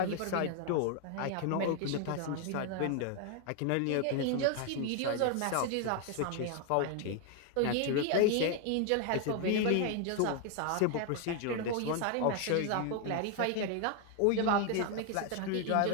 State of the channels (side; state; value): both; different; correlation 0.00